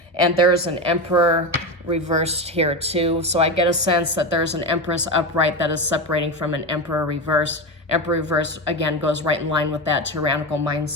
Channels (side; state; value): both; normal; correlation 0.19